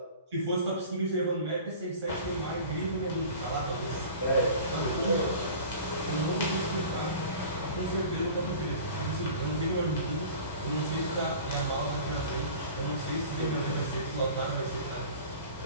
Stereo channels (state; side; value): inverted; both; correlation -0.40